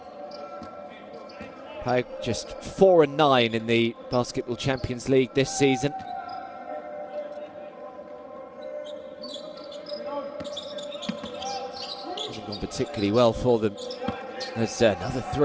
PAOK just 4-9 in the Basketball Champions League this season. Hasn't gone particularly well for them. As another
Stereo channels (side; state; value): both; identical; correlation 1.00